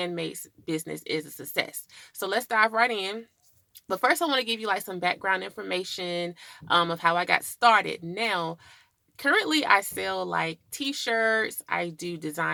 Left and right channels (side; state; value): both; identical; correlation 1.00